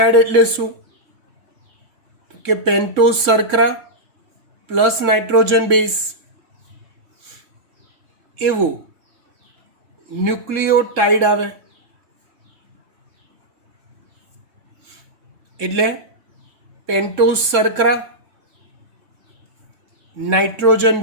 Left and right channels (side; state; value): left; late; 3.7 ms